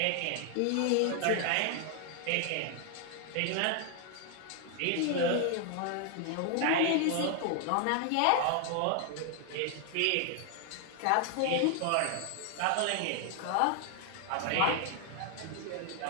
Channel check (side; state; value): both; different; correlation 0.00